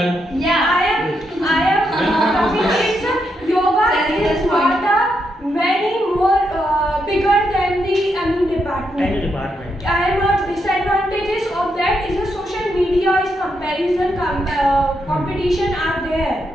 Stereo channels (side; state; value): both; normal; correlation 0.81